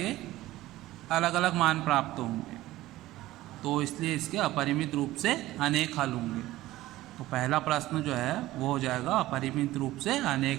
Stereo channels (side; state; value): left; quieter; 16.5 dB